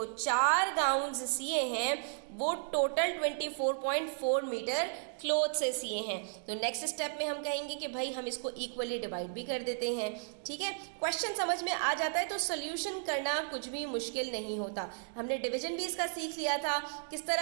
4 गाउन्स सिए हैं वो टोटल 24.4 मीटर क्लॉथ से सिए हैं। तो नेक्स्ट स्टेप में हम कहेंगे कि भाई हम इसको इक्वली डिवाइड भी कर देते हैं, ठीक है। क्वेश्चन समझ में आ जाता है तो सोल्यूशन करना कुछ भी मुश्किल नहीं होता। हमने डिवीजन भी इसका सीख लिया था। किस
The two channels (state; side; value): silent; left; digital silence